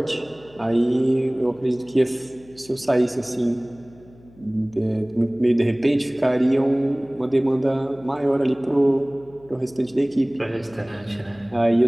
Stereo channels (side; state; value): left; noise; hum, 26 dB below the sound